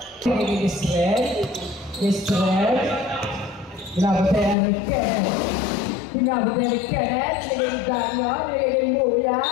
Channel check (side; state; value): right; drops out; at 4.5 s